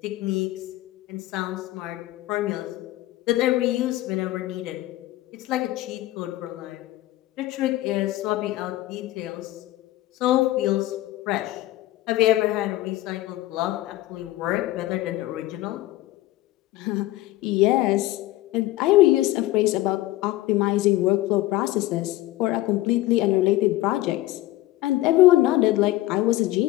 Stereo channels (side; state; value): right; quieter; 16.6 dB